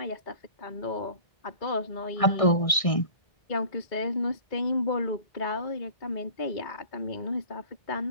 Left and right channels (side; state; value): right; late; 1.6 ms